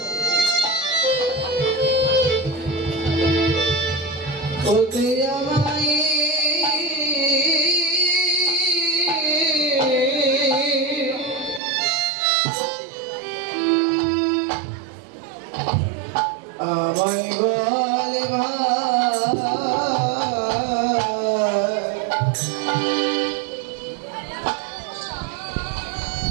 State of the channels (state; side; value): drops out; left; at 11.6 s